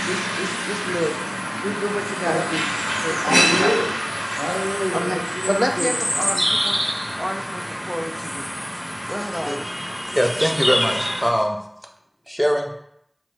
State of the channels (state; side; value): identical; both; correlation 1.00